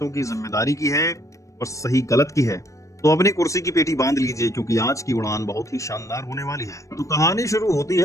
की जिम्मेदारी की है और सही गलत की है। तो अपनी कुर्सी की पेटी बांध लीजिए, क्योंकि आज की उड़ान बहुत ही शानदार होने वाली है। तो कहानी शुरू होती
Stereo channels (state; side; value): late; right; 0.15 ms